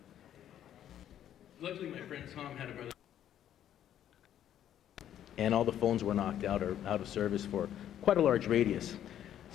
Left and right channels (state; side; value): quieter; right; 10.8 dB